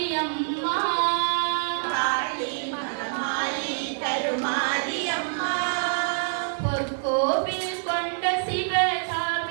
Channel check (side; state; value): left; silent; digital silence